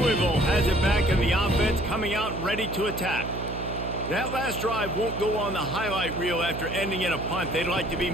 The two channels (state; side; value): noise; right; hum, 7 dB below the sound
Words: has it back in the offense, coming out ready to attack. That last drive won't go on the highlight reel after ending in a punt. They'd like to be